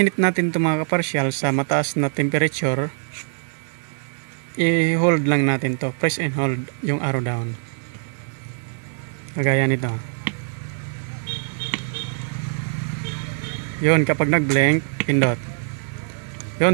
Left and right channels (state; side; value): silent; left; digital silence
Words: natin ito mga kaparsyal sa mataas na temperature, i-hold lang natin to, press and hold yung arrow down. Kagaya nito. Yun, kapag nag-blink, pindot.